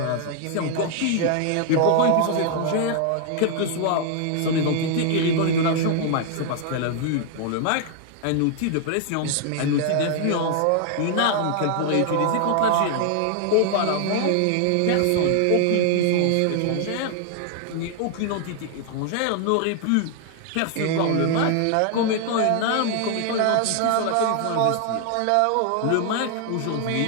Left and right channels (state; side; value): different; both; correlation 0.00